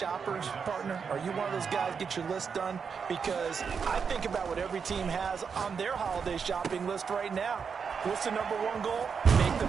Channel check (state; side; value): quieter; left; 6.1 dB